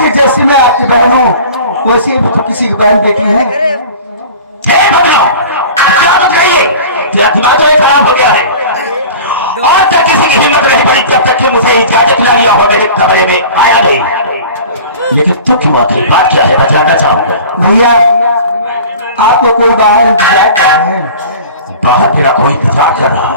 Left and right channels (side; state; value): both; inverted; correlation -0.39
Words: जैसी मैं आपकी बहन हूँ वैसे ही तो किसी की बहन बेटी है। दिमाग तो खराब हो गया है। और तक किसी की हिम्मत नहीं पड़ी जब तक कि मुझे इजाजत न लिया हो मेरे कमरे में आया नहीं। लेकिन तू क्यों आखिर बात क्या है बतलाना चाहूंगा। भैया आपको कोई बाहर इंतजार कर रहे हैं। बाहर तेरा कोई इंतजार कर रहा है।